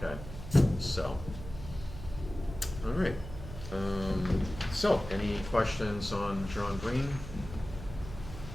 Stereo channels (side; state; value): right; noise; hum, 11 dB below the sound